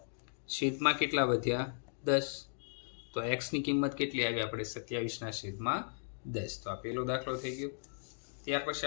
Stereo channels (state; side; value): silent; right; digital silence